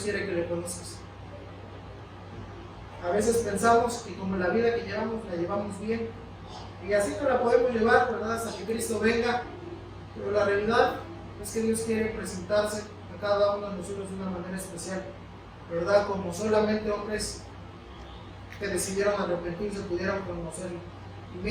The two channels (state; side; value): identical; both; correlation 1.00